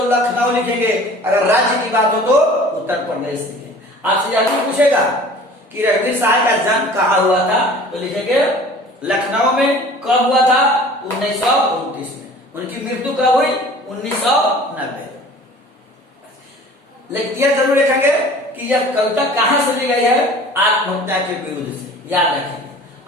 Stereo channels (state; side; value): normal; both; correlation 0.45